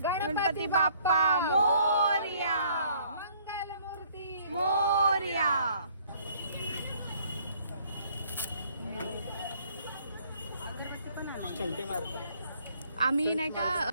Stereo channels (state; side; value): inverted; both; correlation -0.61